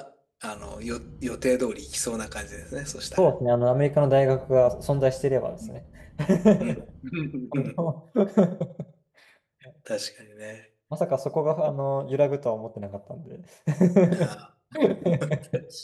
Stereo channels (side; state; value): both; identical; correlation 1.00